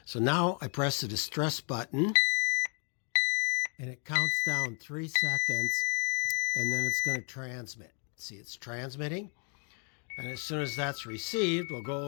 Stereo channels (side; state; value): right; quieter; 39.0 dB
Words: So now I press the distress button, and it counts down 3 seconds, and then it's going to transmit. See, it's transmitting. And as soon as that's received, we'll